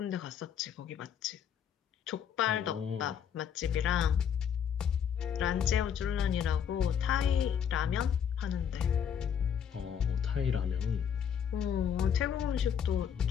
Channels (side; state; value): right; quieter; 8.2 dB